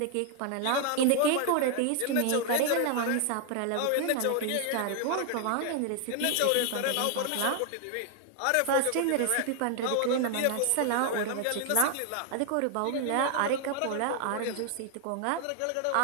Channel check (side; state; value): both; different; correlation 0.00